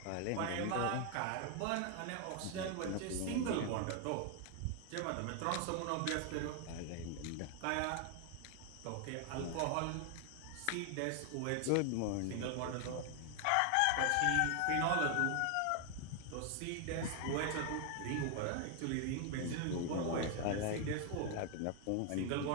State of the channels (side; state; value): both; different; correlation 0.00